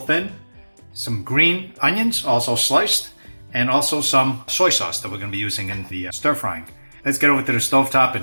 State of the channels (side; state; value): both; inverted; correlation -1.00